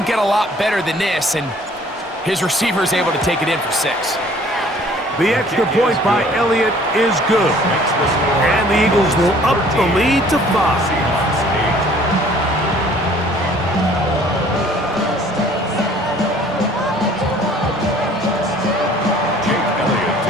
get a lot better than this, and his receiver is able to take it in for 6. The extra point by Elliott is good. And the Eagles will up the lead to 5.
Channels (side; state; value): both; normal; correlation 0.55